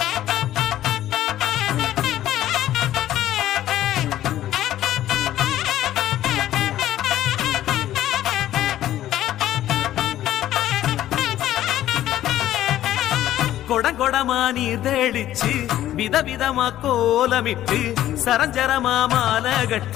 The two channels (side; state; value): right; quieter; 13.1 dB